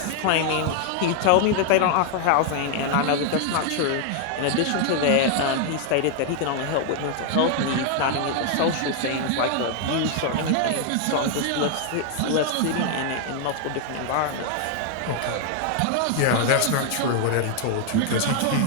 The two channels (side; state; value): both; different; correlation 0.00